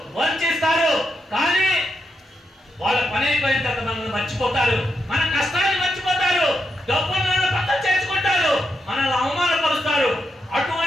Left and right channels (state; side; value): normal; both; correlation 0.83